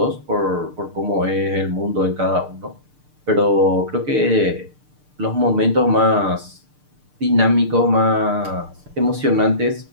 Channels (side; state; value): left; late; 6.7 ms